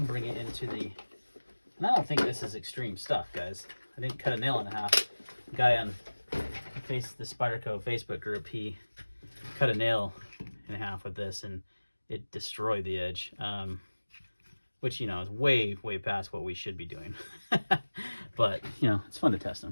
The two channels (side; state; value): both; inverted; correlation -1.00